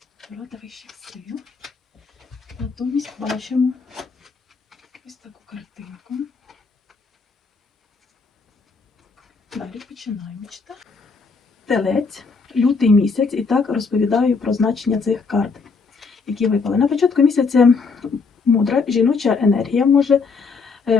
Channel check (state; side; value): quieter; right; 4.7 dB